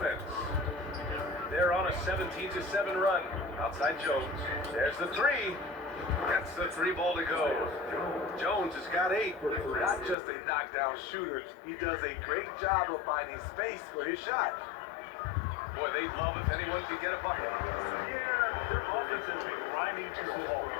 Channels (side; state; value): right; drops out; at 10.2 s